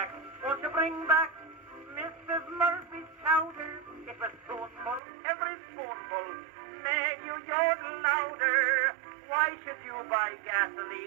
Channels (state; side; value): drops out; left; at 5.0 s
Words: Mrs. Murphy's chowder? It was spoonful, every spoonful made you yodel louder. Why should you buy